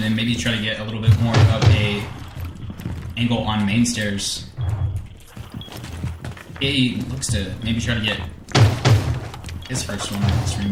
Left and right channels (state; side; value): identical; both; correlation 1.00